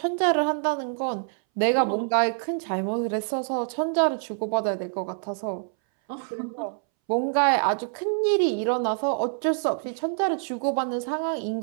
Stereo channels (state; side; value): silent; left; 61 dB below the other